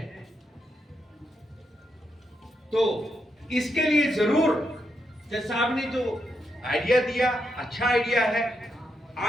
तो इसके लिए जरूर जज साहब ने जो आइडिया दिया, अच्छा आइडिया है।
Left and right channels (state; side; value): normal; both; correlation 0.82